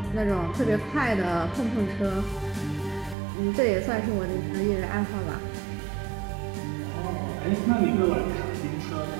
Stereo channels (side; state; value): left; drops out; at 3.2 s